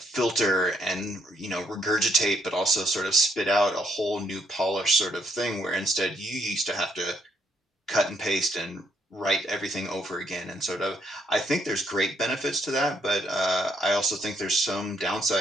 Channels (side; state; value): both; normal; correlation 0.72